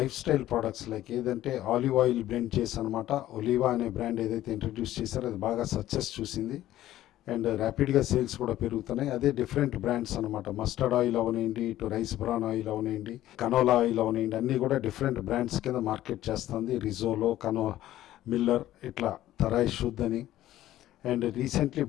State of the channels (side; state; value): right; quieter; 13.9 dB